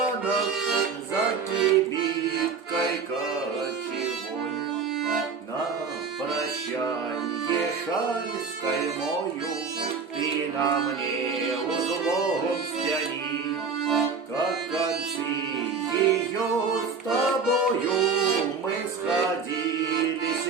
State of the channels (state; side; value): quieter; left; 5.2 dB